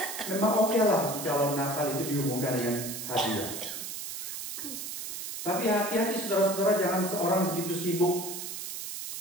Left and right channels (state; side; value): noise; right; hiss, 6 dB below the sound